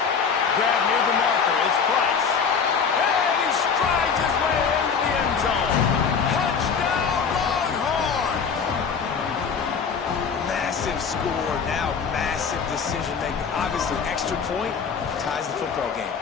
near the marker. It's Price. And he strides his way into the end zone. Touchdown, Longhorn! Massive score. Now massive decision making. Obviously, extra point ties the football game.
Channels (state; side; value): quieter; right; 6.1 dB